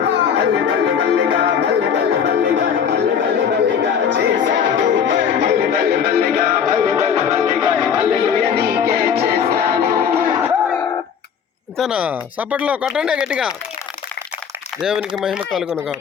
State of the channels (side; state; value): right; quieter; 7.5 dB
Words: బల్లె బల్లె బల్లెగా బల్లె బల్లె బల్లెగా బల్లె బల్లె బల్లెగా చేశావు. బల్లె బల్లె బల్లెగా బల్లె బల్లె బల్లెగా హల్లెలూయా నీకే చేస్తాను. ఇంతేనా? సప్పట్లో కొట్టండి గట్టిగా. దేవునికి మహిమ కలుగునుగా.